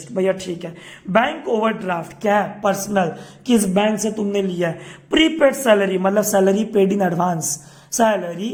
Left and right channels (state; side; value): identical; both; correlation 1.00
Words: भैया ठीक है। बैंक ओवरड्राफ्ट क्या है? पर्सनल, किस बैंक से तुमने लिया है? प्रीपेड सैलरी मतलब salary paid in advance, salary